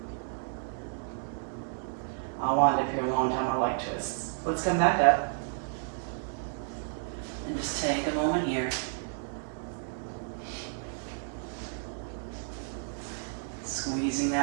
I'll wind up here a long time. I like twists. Let's come back up and just take a moment here. Squeezing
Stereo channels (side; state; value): left; silent; digital silence